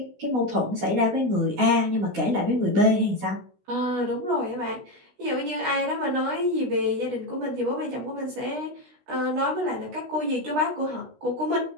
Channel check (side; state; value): left; late; 16 ms